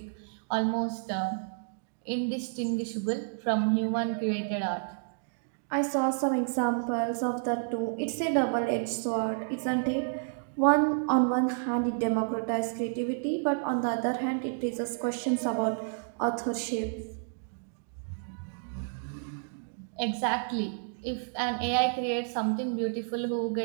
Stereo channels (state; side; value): silent; left; digital silence